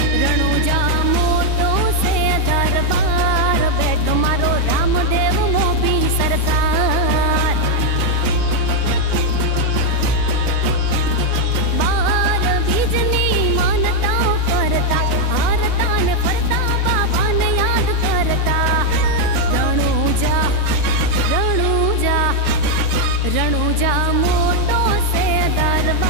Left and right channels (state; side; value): different; both; correlation 0.00